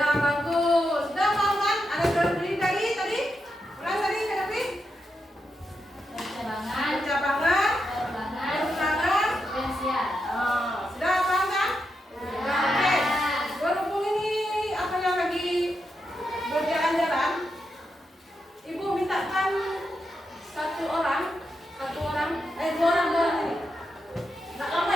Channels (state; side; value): normal; both; correlation 0.85